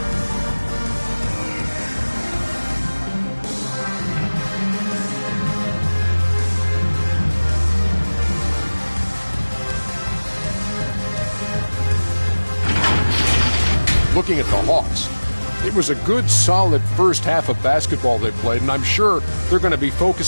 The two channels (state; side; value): inverted; both; correlation -1.00